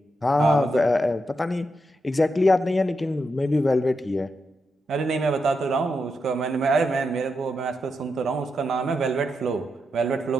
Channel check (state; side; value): normal; both; correlation 0.85